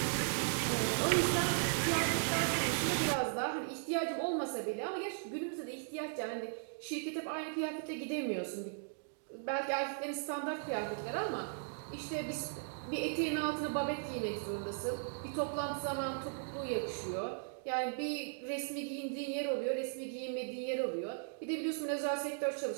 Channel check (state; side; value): silent; left; digital silence